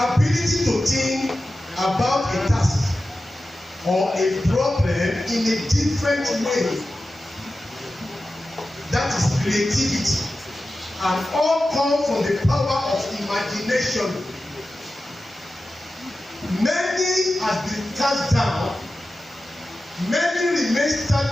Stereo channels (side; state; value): both; normal; correlation 0.93